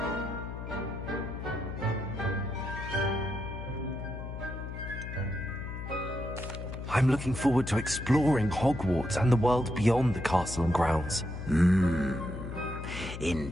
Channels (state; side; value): noise; left; hum, 8 dB below the sound